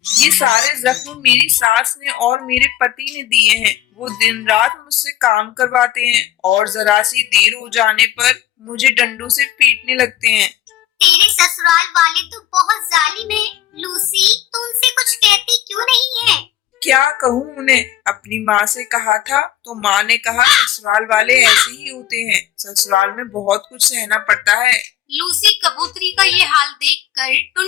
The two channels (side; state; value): right; quieter; 12.9 dB